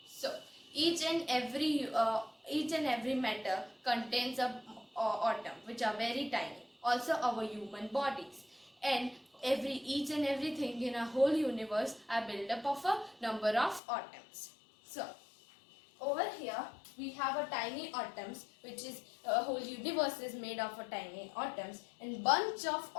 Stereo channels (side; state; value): right; drops out; at 13.8 s